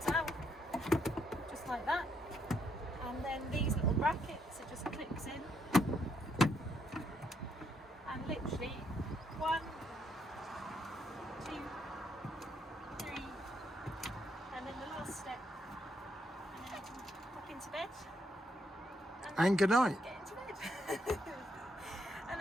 out, just like that. And then these little brackets, it just clips in. And literally 1, 2, 3, and then the last step. And then you can pop into bed. And good night. Get into bed. And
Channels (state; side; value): normal; both; correlation 0.75